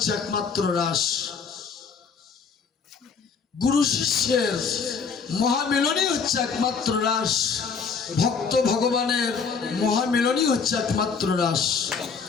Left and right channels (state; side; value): quieter; right; 5.6 dB